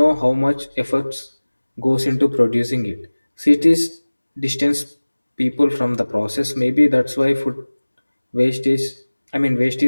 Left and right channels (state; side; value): inverted; both; correlation -1.00